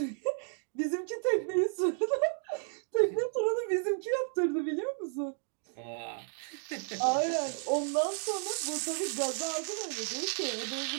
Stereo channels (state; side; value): silent; left; digital silence